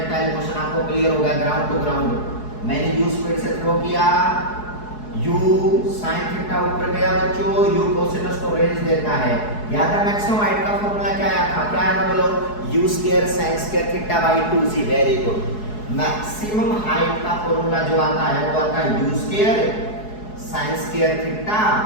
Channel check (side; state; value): right; late; 4.7 ms